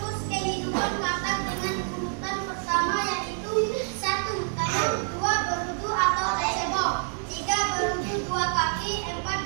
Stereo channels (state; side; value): silent; left; 60 dB below the other